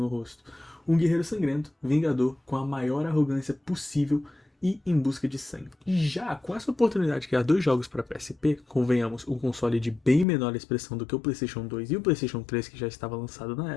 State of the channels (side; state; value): right; drops out; at 10.2 s